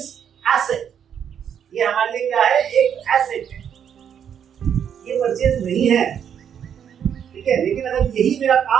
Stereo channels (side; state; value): left; quieter; 8.4 dB